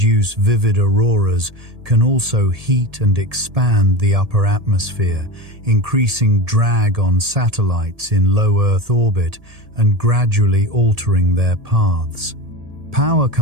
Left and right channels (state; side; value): late; left; 1.7 ms